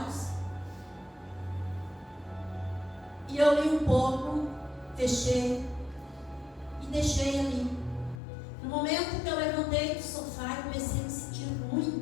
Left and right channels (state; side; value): drops out; right; at 8.2 s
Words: E eu li um pouco, fechei e deixei ali. No momento que eu levantei do sofá, eu comecei a me sentir